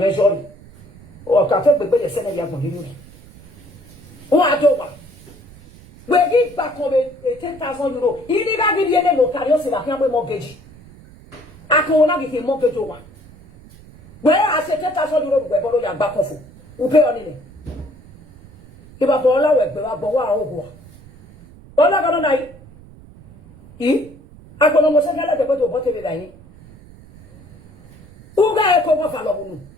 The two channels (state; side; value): noise; right; rumble, 22 dB below the sound